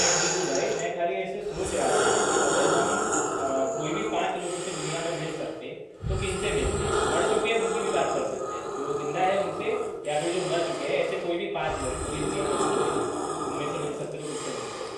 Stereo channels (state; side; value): identical; both; correlation 1.00